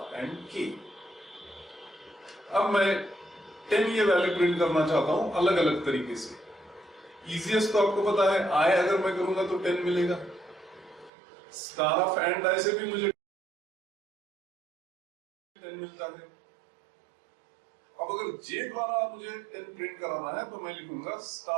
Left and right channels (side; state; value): left; drops out; at 11.1 s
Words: and K. अब मैं 10 ये वैल्यू प्रिंट करना चाहता हूं अलग अलग तरीके से। इजीएस्ट तो आपको पता है, आई अगर मैं करूंगा तो 10 मिलेगा, स्टार ऑफ एंड आई से भी मुझे 10 मिलता है। अब अगर जे द्वारा मुझे 10 प्रिंट कराना है तो मैं लिखूंगा